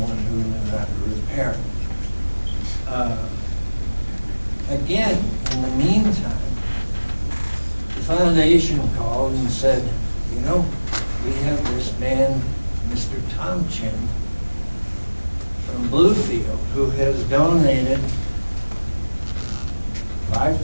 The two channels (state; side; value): inverted; both; correlation -1.00